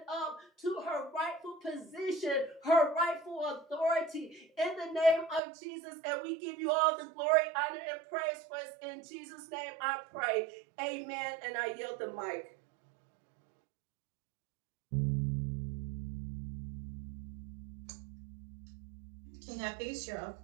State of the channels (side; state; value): left; drops out; at 5.4 s